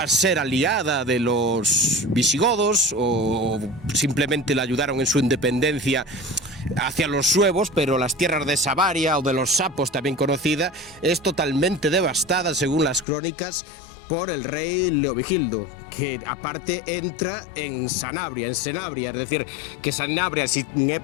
a ser aliada de los visigodos o simplemente la ayudaron en su independencia hacia los suevos, pero las tierras de Savaria o de los sapos, también conocida, es totalmente devastada, según las crónicas, por el rey Leovigildo, que aparte entra en Sanabria, es decir, que Sanabria, si en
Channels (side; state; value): right; drops out; at 13.1 s